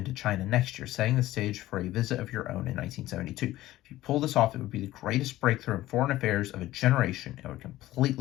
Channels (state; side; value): quieter; right; 15.7 dB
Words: China next year, setting the stage for a visit of your own in 1972. If you pull this off, it would be the greatest breakthrough in foreign affairs of a generation. It would